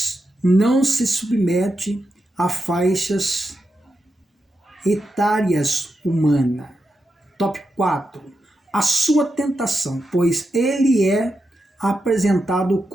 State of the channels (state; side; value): normal; both; correlation 0.87